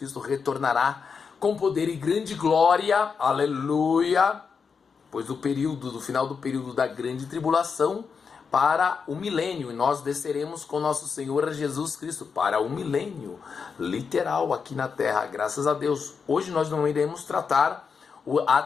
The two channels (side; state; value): right; quieter; 5.7 dB